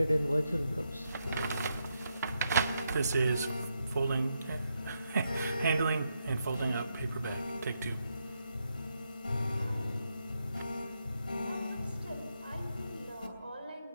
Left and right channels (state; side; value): inverted; both; correlation -0.81